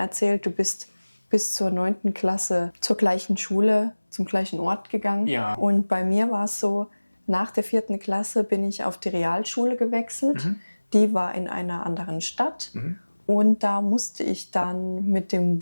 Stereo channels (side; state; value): both; inverted; correlation -1.00